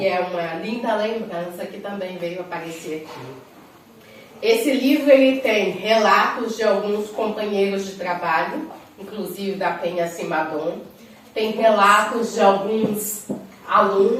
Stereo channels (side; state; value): both; identical; correlation 1.00